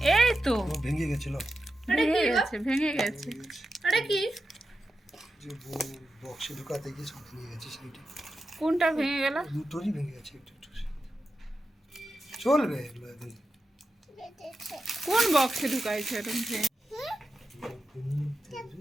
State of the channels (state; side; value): normal; both; correlation 0.90